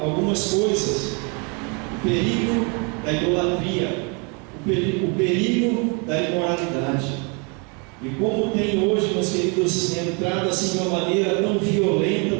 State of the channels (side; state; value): left; quieter; 33.9 dB